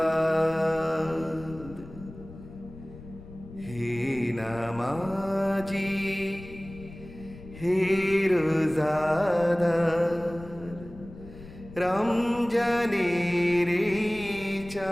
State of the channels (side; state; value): left; noise; rumble, 16 dB below the sound